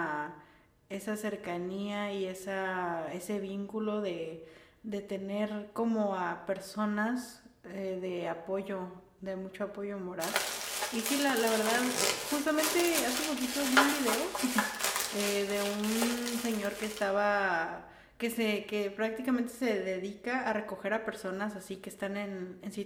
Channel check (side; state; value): both; identical; correlation 1.00